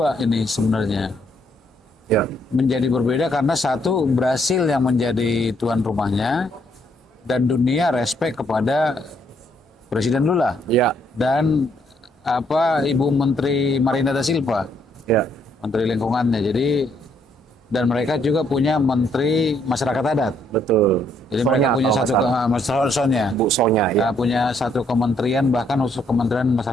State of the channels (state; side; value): normal; both; correlation 0.71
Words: ini sebenarnya. Ya. Menjadi berbeda karena satu, Brasil yang menjadi tuan rumahnya dan dunia respect kepada Presiden Lula. Ya. Dan Ibu Menteri Marina da Silva, Ya. Menteri Lingkungannya. Jadi dan mereka juga punya Menteri Masyarakat Adat. Betul. Jadi mereka punya satu Sonya. Bu Sonya ya. Punya satu kementerian, bahkan khusus Kementerian